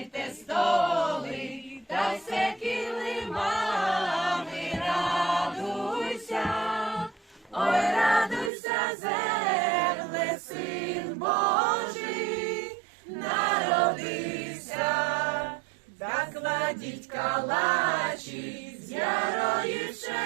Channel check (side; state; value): left; drops out; at 8.5 s